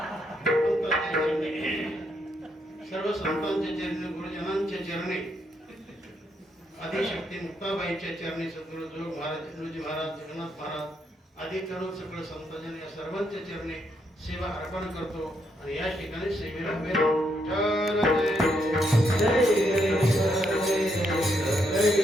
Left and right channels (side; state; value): both; normal; correlation 0.77